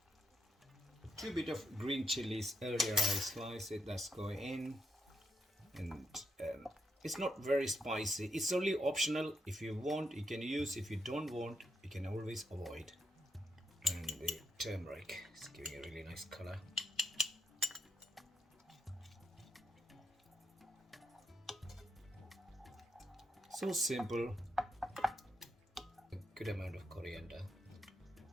Two bit of green chilies. Earlier I sliced it. That's going in, and it's not very spicy. It's only optional. If you want, you can use. If you don't want, you can always avoid. And the turmeric is giving a really nice color. So simple. A good amount of coriander.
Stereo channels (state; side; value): normal; both; correlation 0.79